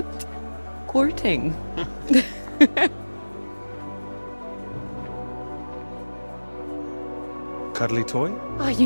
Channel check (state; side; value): inverted; both; correlation -1.00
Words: courting. Cuddly toy? Oh, you